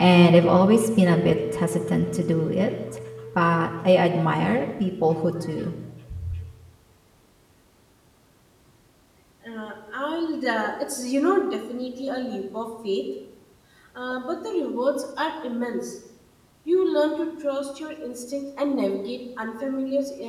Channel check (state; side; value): identical; both; correlation 1.00